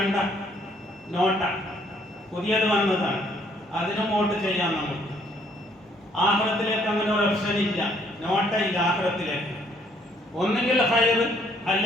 നോട്ട പുതിയത് വന്നതാണ്, അതിനും വോട്ട് ചെയ്യാം നമുക്ക്. ആഖിറത്തിലേക്ക് അങ്ങനെ ഒരു ഓപ്ഷൻ ഇല്ല, നോട്ട ഇല്ല ആഖിറത്തിലേക്ക്. ഒന്നുകിൽ ഖൈർ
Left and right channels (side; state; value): both; normal; correlation 0.65